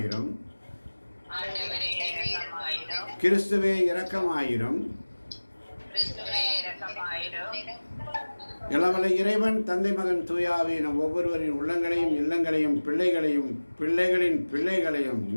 கிறிஸ்துவே இரக்கமாயிரும். இளவலை இறைவன் தந்தை மகன் தூயாவி நம் ஒவ்வொருவரின் உள்ளங்களையும் இல்லங்களையும் பிள்ளைகளையும் பிள்ளைகளின் பிள்ளைகளையும்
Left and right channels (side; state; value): both; inverted; correlation -1.00